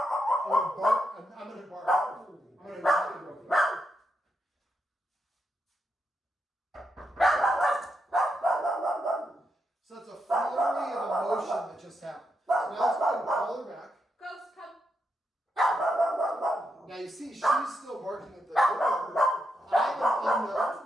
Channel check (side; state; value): both; normal; correlation 0.83